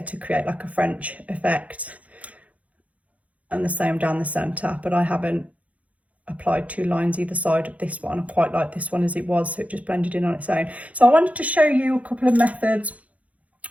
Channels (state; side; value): late; left; 0.068 ms